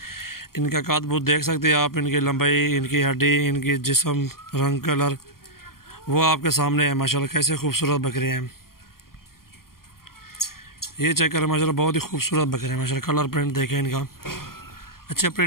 इनका काद बूत देख सकते हैं आप, इनकी लंबाई, इनकी हड्डी, इनकी जिस्म, रंग, कलर वो आपके सामने है माशाल्लाह। कैसे खूबसूरत बकरे हैं ये, चेक करें माशाल्लाह। बहुत ही खूबसूरत बकरे हैं माशाल्लाह। कलर प्रिंट देखें इनका, अच्छे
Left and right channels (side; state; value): right; late; 0.93 ms